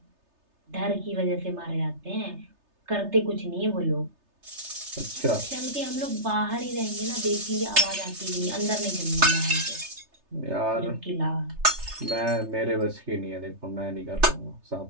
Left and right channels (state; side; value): late; left; 3.3 ms